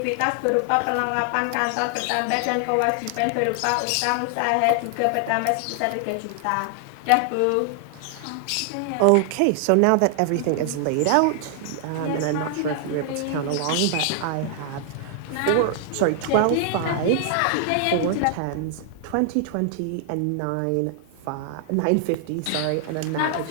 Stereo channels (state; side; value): different; both; correlation 0.00